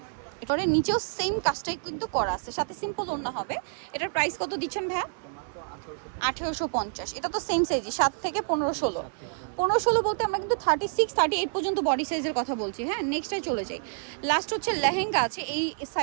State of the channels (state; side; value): silent; left; digital silence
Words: এরপরে নিচেও সেম কাজটাই কিন্তু করা আছে, সাথে সিম্পল ওড়না হবে। এটার প্রাইস কত দিচ্ছেন ভাইয়া? 1850। এটা তো সেম সাইজই, 7 থেকে 15-16। 15-16 বলতে আমরা কিন্তু 36-38 পর্যন্ত বডি সাইজের কথা বলছি। হ্যাঁ নেক্সটটাই চলে যাই। লাস্ট হচ্ছে লেহেঙ্গা আছে, এই